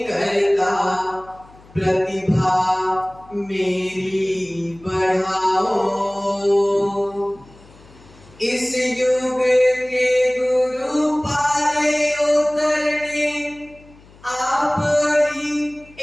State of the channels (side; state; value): left; noise; hum, 25 dB below the sound